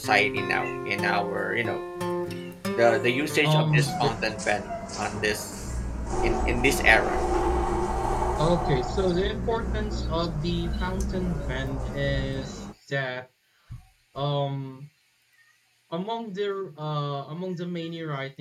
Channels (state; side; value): identical; both; correlation 1.00